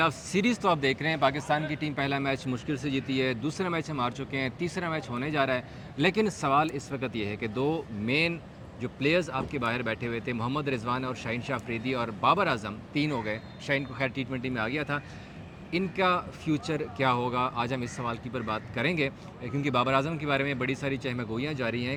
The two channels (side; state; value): both; identical; correlation 1.00